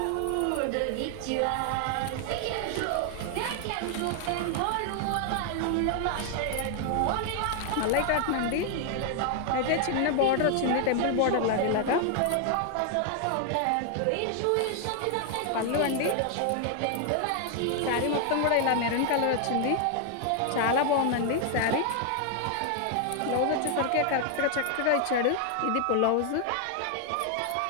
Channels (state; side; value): different; both; correlation 0.00